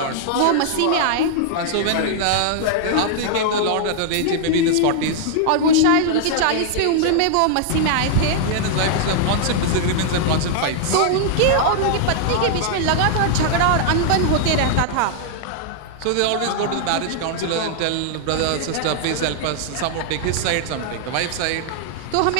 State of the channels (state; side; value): different; both; correlation -0.01